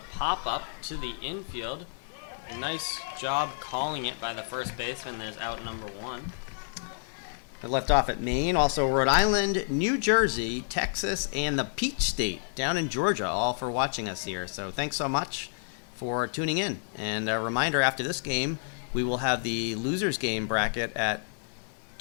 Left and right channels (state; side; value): silent; right; digital silence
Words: to the infield. A nice job calling it by the first baseman. There's out number 1. I left off at Maine, also Rhode Island, New Jersey, Texas, and the Peach State down in Georgia, all for watching us here. So thanks so much for tuning in. And a reminder, after this game, we will have the losers game bracket at